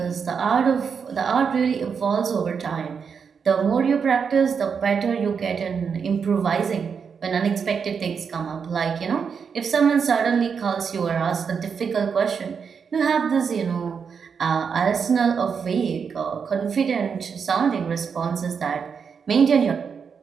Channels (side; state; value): left; quieter; 6.3 dB